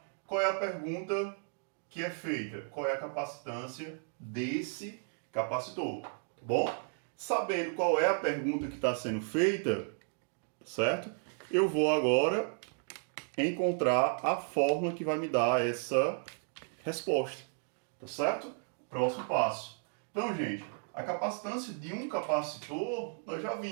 qual é a pergunta que é feita? Qual é a capacitância desse capacitor, tá bom? Sabendo qual é a pergunta que está sendo feita, certo? Eu vou agora encontrar a fórmula que vai me dar essa resposta, tá certo? Próximo passo. Então, gente, a capacitância de um capacitor, nós já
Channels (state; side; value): silent; left; 55 dB below the other